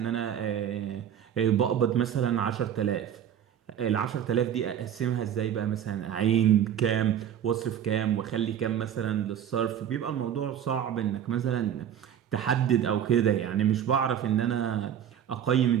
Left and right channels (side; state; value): left; quieter; 9.6 dB